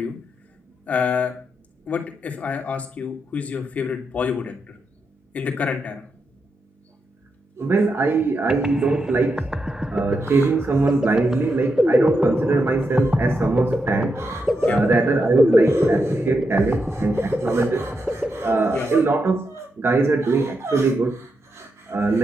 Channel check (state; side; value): normal; both; correlation 0.84